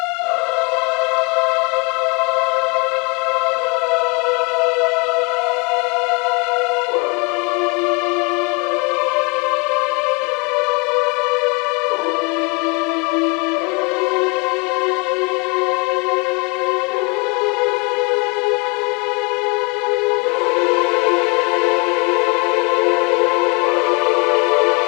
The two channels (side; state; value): right; quieter; 30.5 dB